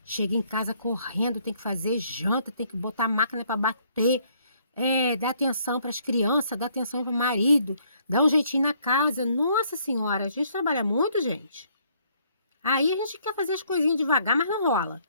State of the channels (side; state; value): both; inverted; correlation -0.66